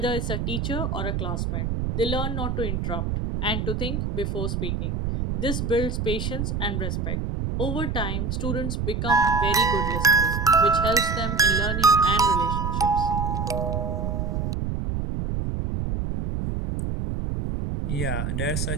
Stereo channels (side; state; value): right; noise; rumble, 1 dB below the sound